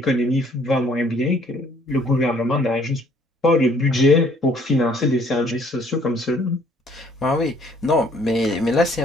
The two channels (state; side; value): normal; both; correlation 0.61